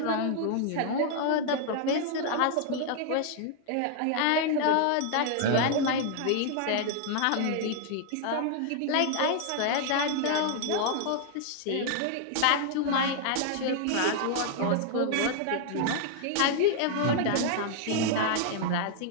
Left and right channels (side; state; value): both; different; correlation 0.00